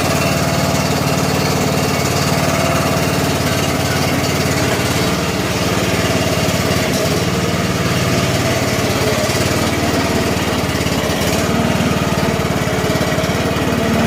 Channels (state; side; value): identical; both; correlation 1.00